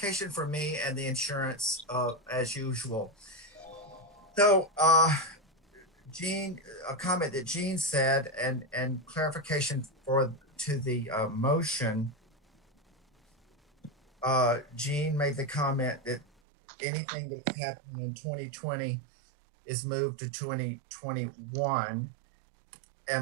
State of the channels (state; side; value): drops out; left; at 16.2 s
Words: for me and the insurance as usual. So Gene, a comment that Gene said and clarification to the motion. Gene made the comment that anything that's happening in 2020 is moved to 2021.